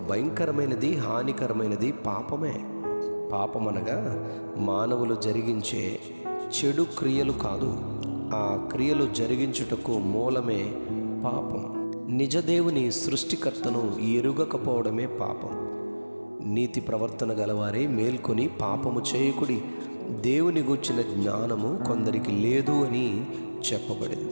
భయంకరమైనది, హానికరమైనది పాపమే. పాపమనగా మానవులు జరిగించే చెడు క్రియలు కాదు, ఆ క్రియలు జరిగించుటకు మూలమే పాపం. నిజదేవుని సృష్టికర్తను ఎరుగకపోవడమే పాపం. నీతి ప్రవర్తన గలవారే మేల్కొని పాపము చేయకుడి, దేవుని గూర్చిన జ్ఞానము కొందరికి లేదు అని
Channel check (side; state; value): both; inverted; correlation -1.00